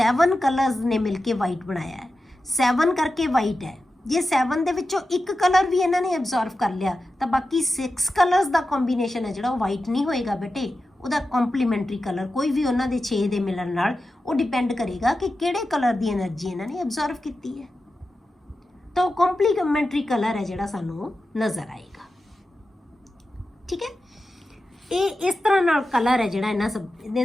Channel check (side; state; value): both; normal; correlation 0.92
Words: कलर्स ने मिलके वाइट बनाया है। 7 करके वाइट है, जे 7 दे विचों एक कलर भी इन्होंने अब्जॉर्व कर लिया तो बाकी 6 कलर्स का कॉम्बीनेशन है जिहड़ा वाइट नहीं होएगा बेटे, उहदा कॉम्पलीमेंटरी कलर कोई भी उन्हां दे 6 दे मिलन नाल वो डिपेंड करेगा कि किहड़े कलर की एनर्जी इन्होंने अब्जॉर्व की है। तो कॉम्पलीमेंटरी कलर है जिहड़ा सानू नज़र आएगा। ठीक है, ये इस तरह नाल कलर है जिहड़ा इन्हां सब